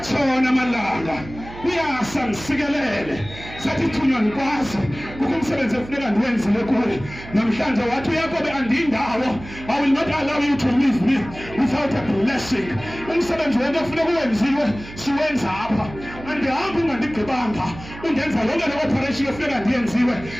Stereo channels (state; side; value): noise; right; hum, 15 dB below the sound